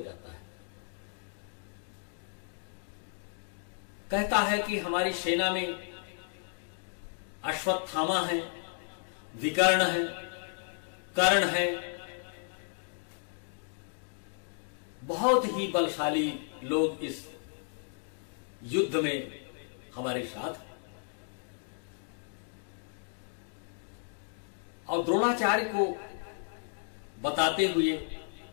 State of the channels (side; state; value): right; silent; digital silence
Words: है। कहता है कि हमारी सेना में अश्वत्थामा है, विकर्ण है, कर्ण है, बहुत ही बलशाली लोग इस युद्ध में हमारे साथ हैं। और द्रोणाचार्य को बताते हुए